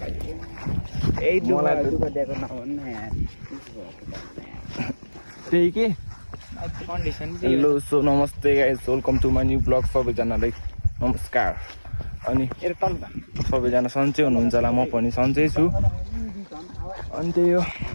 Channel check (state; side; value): inverted; both; correlation -1.00